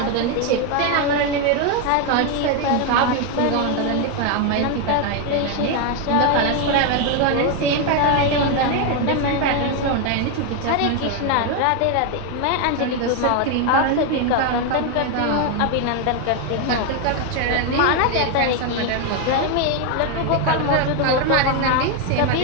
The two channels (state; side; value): different; both; correlation 0.01